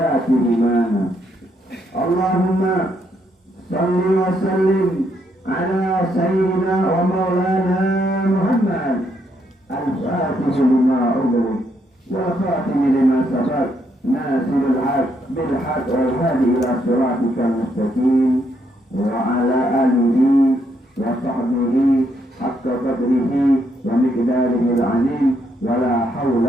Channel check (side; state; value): both; normal; correlation 0.75